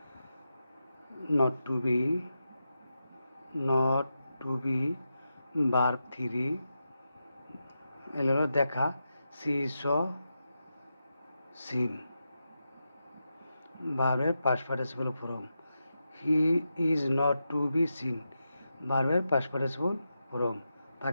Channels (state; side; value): inverted; both; correlation -0.88